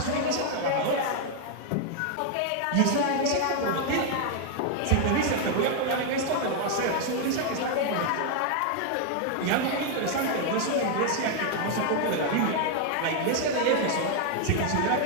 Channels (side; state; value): both; different; correlation 0.00